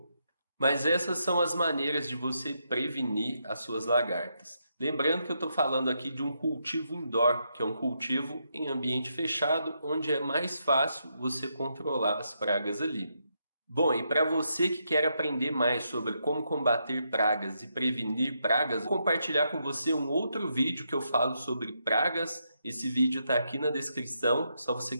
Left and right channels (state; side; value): inverted; both; correlation -0.80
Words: mas essas são as maneiras de você prevenir as suas lagartas. Lembrando que eu estou falando aqui de um cultivo indoor, que é um cultivo em ambiente fechado, onde é mais fácil você controlar as pragas ali. Bom, e para você que quer aprender mais sobre como combater pragas e prevenir pragas, vou compartilhar com você um outro vídeo que eu falo sobre pragas. Esse vídeo está aqui na descrição, é só você